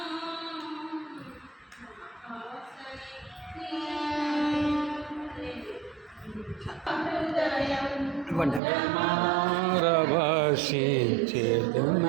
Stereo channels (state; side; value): drops out; left; at 8.6 s